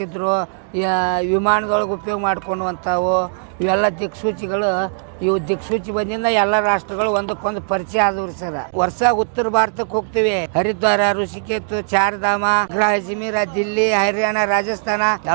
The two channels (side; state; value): left; silent; 61 dB below the other